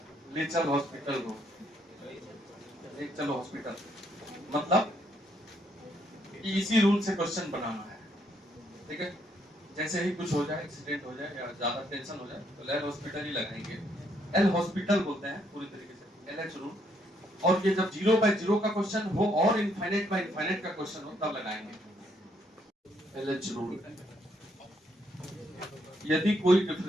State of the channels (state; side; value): normal; both; correlation 0.72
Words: लेचर हॉस्पिटल रूल, एक चलो हॉस्पिटल, मतलब कि इसी रूल से क्वेश्चन बनाना है, ठीक है। जैसे ही कुछ हो जाए, एक्सीडेंट हो जाए या ज्यादा टेंशन हो जाए तो एल हॉस्पिटल ही लगाएंगे, एल हॉस्पिटल बोलते हैं पूरी तरीके से, LH रूल। और ये जब 0 बाय 0 का क्वेश्चन हो और इनफाइनाइट बाय इनफाइनाइट का क्वेश्चन हो तब लगाएंगे LH रूल। यदि कोई